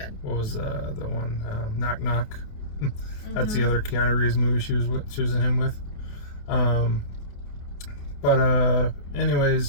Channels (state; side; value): late; right; 28 ms